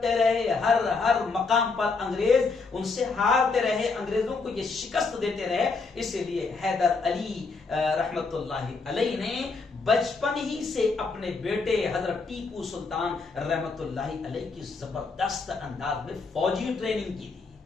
رہے. ہر مقام پر انگریز ان سے ہارتے رہے, انگریزوں کو یہ شکست دیتے رہے. اسی لیے حیدر علی رحمت اللہ علیہ نے بچپن ہی سے اپنے بیٹے حضرت ٹیپو سلطان رحمت اللہ علیہ کی زبردست انداز میں فوجی ٹریننگ کی تھی,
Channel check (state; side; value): quieter; right; 4.3 dB